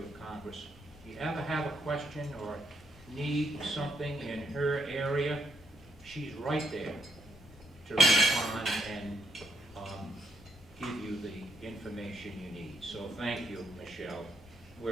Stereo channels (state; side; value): normal; both; correlation 0.76